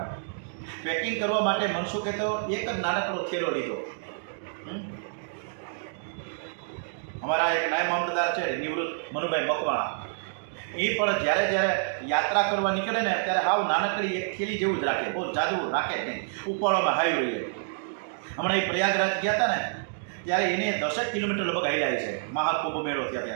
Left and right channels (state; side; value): silent; left; digital silence